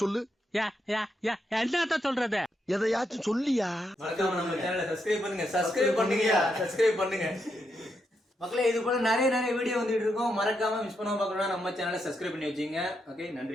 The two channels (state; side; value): normal; both; correlation 0.81